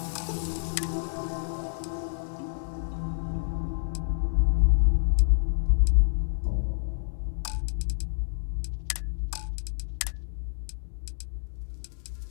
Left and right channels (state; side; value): silent; right; 59 dB below the other